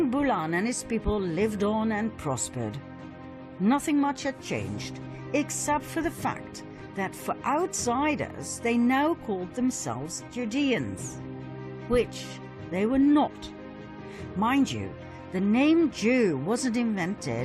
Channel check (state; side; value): identical; both; correlation 1.00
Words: Bulan and his people lived on and prospered. Nothing much had changed, except for the fact that for outsiders they now called themselves Judeans, which they were not. Mind you, the name Jew wasn't